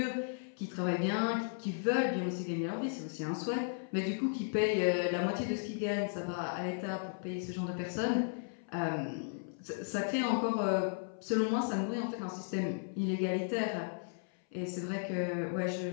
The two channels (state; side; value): silent; right; 54 dB below the other